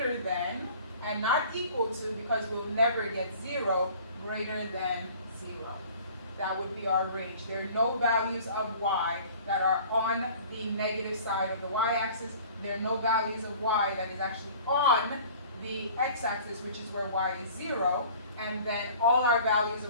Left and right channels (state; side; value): inverted; both; correlation -0.48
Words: than, and not equal to, because we'll never get 0, greater than 0. That would be our range. There are no values of y that are on the negative side of the y-axis. There are no values of y that is actually on the x-axis, which is where y is 0. And then all our values